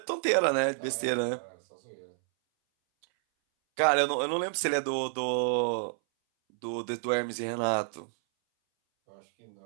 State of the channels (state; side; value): silent; left; 58 dB below the other